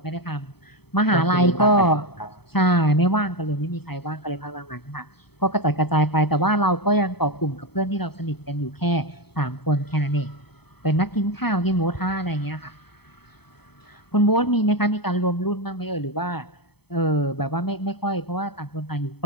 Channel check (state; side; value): late; right; 0.97 ms